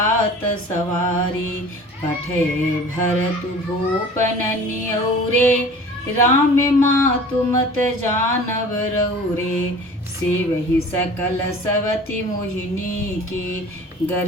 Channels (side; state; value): both; normal; correlation 0.43